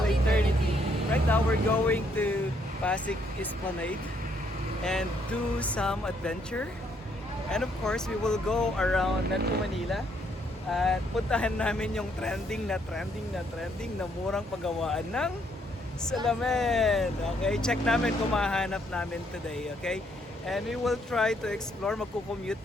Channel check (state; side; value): normal; both; correlation 0.71